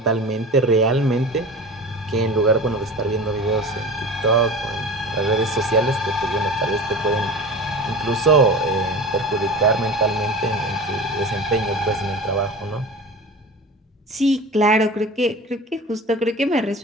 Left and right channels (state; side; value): normal; both; correlation 0.33